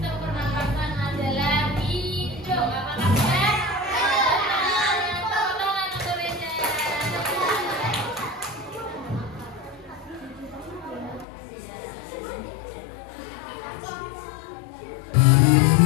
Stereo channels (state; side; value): drops out; right; at 11.2 s